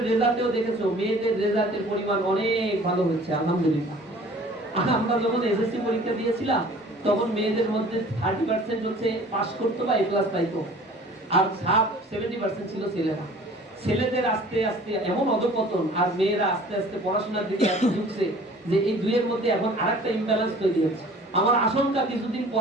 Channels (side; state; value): both; normal; correlation 0.49